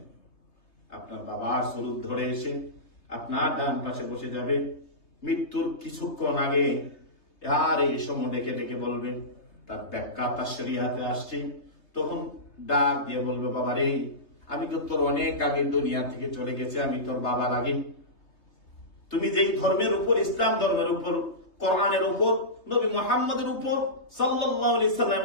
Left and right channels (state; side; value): late; right; 3.3 ms